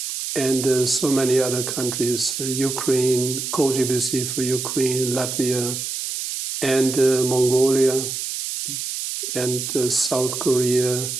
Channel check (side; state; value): right; noise; hiss, 4 dB below the sound